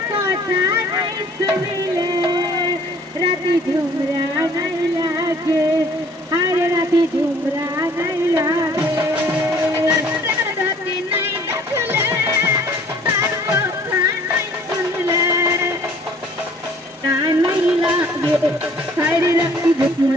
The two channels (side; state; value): both; normal; correlation 0.55